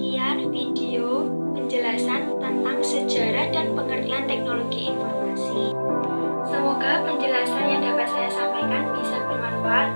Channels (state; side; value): inverted; both; correlation -1.00